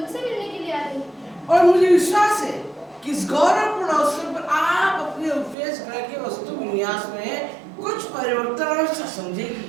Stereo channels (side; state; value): left; drops out; at 5.6 s